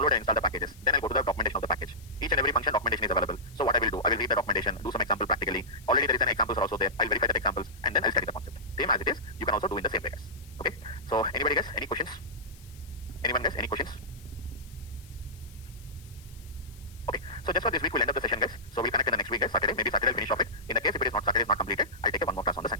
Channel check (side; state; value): left; noise; hiss, 24 dB below the sound